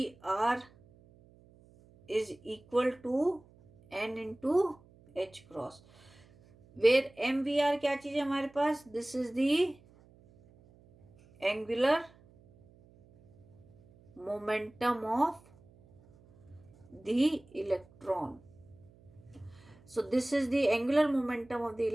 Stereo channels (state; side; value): noise; right; hum, 27 dB below the sound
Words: R is equal to N into H cross, where M we R क्या चीज है हमारे पास, this is the angular momentum of the electron. So this is the angular momentum of the